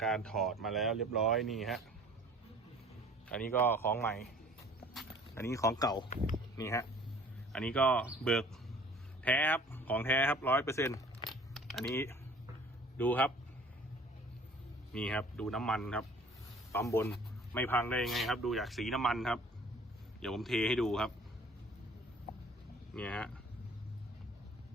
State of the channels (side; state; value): both; normal; correlation 0.50